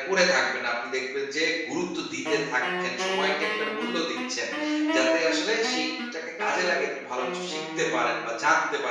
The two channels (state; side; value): identical; both; correlation 1.00